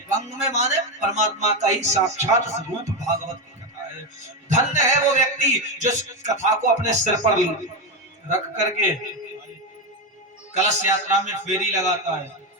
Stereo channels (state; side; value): normal; both; correlation 0.12